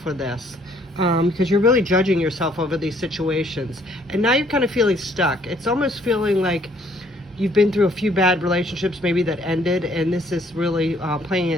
for this. Because you're really judging yourself over these situations. And now you're kind of feeling stuck. It's almost feeling like you've been through a few bad relationships maybe that ended, and this is really playing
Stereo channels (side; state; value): both; normal; correlation 0.64